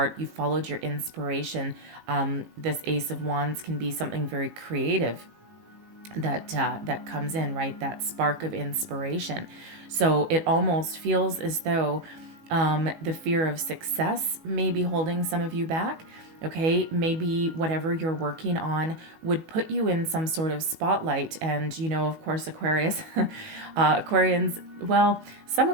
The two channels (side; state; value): left; late; 19 ms